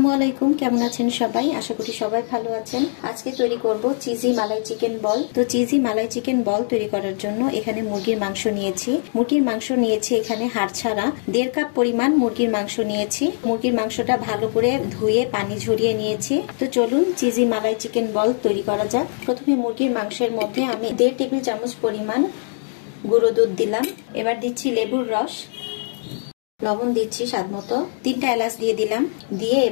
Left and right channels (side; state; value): right; silent; digital silence